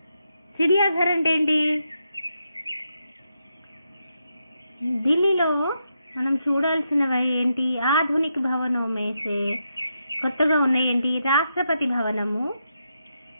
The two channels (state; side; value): inverted; both; correlation -0.83